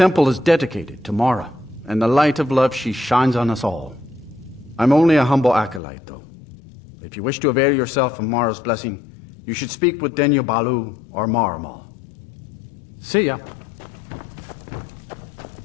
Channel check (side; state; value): right; drops out; at 5.8 s